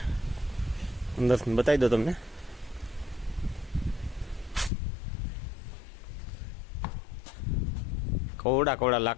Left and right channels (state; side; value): drops out; right; at 4.7 s